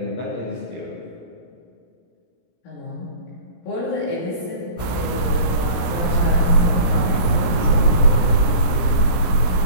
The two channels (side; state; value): right; late; 17 ms